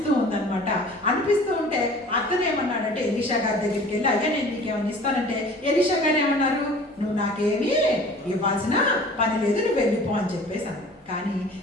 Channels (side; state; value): both; normal; correlation 0.46